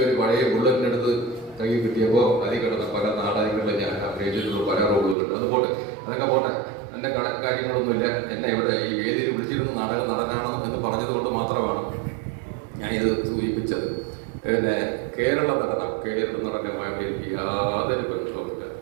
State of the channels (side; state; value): left; drops out; at 5.2 s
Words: ഒരു പഴയ ബുള്ളറ്റിനെടുത്ത് കൈ കിട്ടിയപ്പോൾ അതിൽ കിടന്ന പല നാടകങ്ങളിൽ ഞാൻ അഭിനയിച്ചിട്ടുള്ള പല റോളുകളുണ്ട്. അതുപോലെ അതൊക്കെ പോട്ടെ, എന്റെ കാര്യങ്ങളൊന്നുമില്ല. എന്നെ ഇവിടെ ഈ വേദിയിൽ വിളിച്ചിരുന്ന നാടക നടനാണോ എന്ന് പറഞ്ഞത് കൊണ്ട് മാത്രമാണ് ഞാൻ ഇത് സൂചിപ്പിച്ചത്. പിന്നെ കേരള നടനമായിട്ട് എനിക്ക് യാതൊരു ബന്ധവുമില്ല.